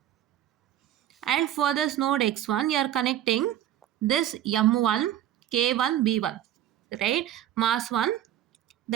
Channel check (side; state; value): left; quieter; 11.8 dB